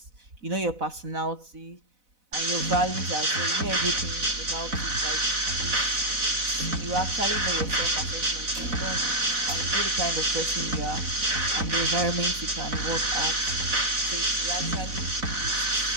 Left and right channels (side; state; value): left; late; 4.0 ms